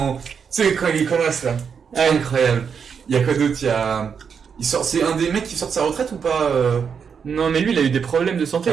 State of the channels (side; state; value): left; quieter; 6.6 dB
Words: Tu sais, quand il est connasse là. C'est incroyable. Il y a quoi d'autre? C'est un des mecs qui sort de sa retraite ou pas Non, mais lui, il a eu des problèmes de santé,